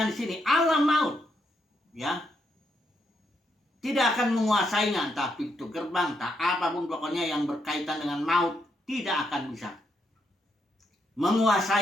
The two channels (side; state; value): both; normal; correlation 0.78